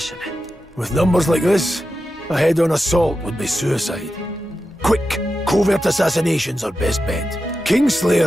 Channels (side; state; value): both; normal; correlation 0.90